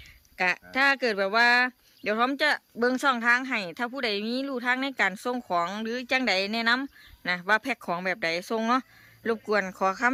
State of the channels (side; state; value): both; identical; correlation 1.00